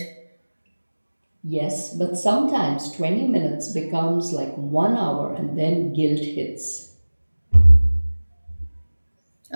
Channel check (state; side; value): inverted; both; correlation -1.00